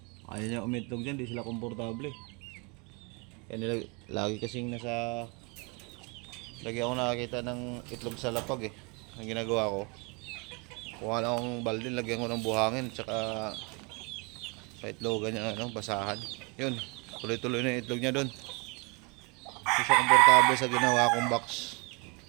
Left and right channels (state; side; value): quieter; left; 30.9 dB